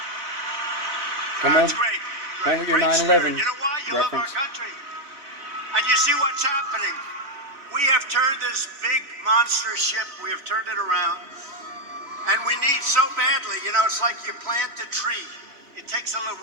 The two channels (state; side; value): late; left; 3.0 ms